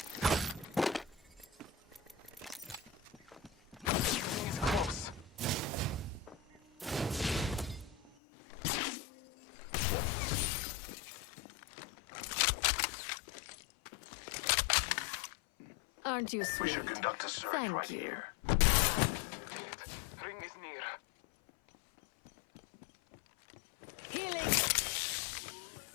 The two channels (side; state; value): right; drops out; at 8.2 s